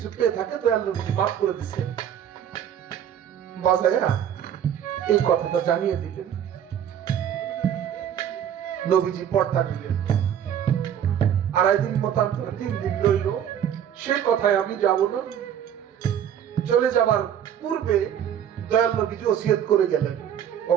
পেয়ে থাকে, দয়াল নবীজি মাফ করে দিচ্ছেন। বাজায়া এই কথাটা জানিয়ে দিলেন। নবীজি পর্দা দিলেন। 2.5 দিন মতান্তরে 3 দিন রইল। সে কথায় আমি যাব না। চলে যাবার পূর্বে দয়াল নবীজি ওসিয়ত করে গেলেন,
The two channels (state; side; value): quieter; left; 9.5 dB